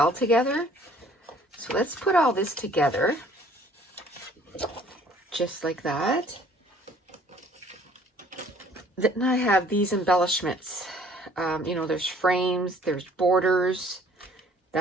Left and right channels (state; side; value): normal; both; correlation 0.57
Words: together. So let's put all this together just like that. Then I have these embellishments. You know, there's frames, there's borders,